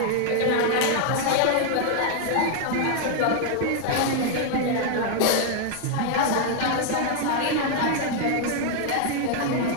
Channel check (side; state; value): both; different; correlation 0.00